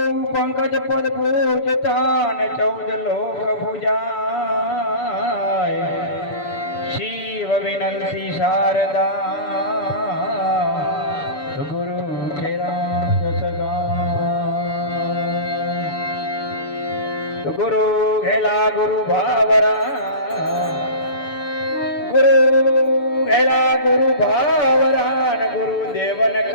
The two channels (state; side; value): late; right; 6.9 ms